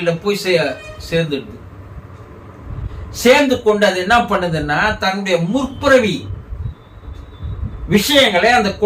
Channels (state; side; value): identical; both; correlation 1.00